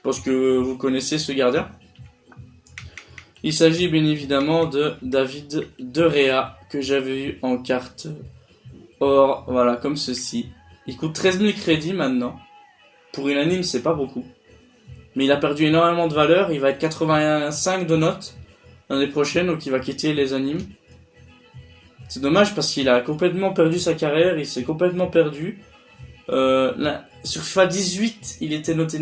pense que vous connaissez ce gardien. Il s'agit bien évidemment de David De Gea, que j'avais eu en carte or, voilà, comme ceci. Il coûte 13 000 crédits maintenant. Pour une anime, c'est pas beaucoup. Mais il a perdu énormément de valeur. Il va être 85 de notes l'année prochaine, donc il va quitter les animes. C'est dommage parce qu'il a complètement perdu sa carrière. Il s'est complètement perdu. Sur FIFA 18, il était noté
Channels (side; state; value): both; identical; correlation 1.00